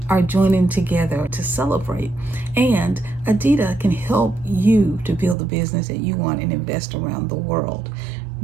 are joining together to celebrate, and ADITA can help you to build the business that you want and invest around the world.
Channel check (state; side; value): drops out; left; at 5.4 s